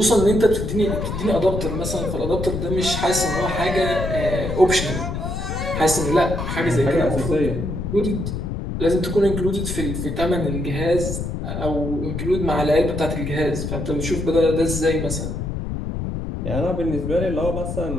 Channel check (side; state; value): left; noise; rumble, 4 dB below the sound